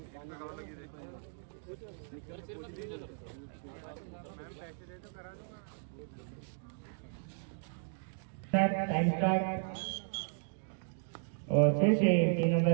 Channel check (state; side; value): silent; left; digital silence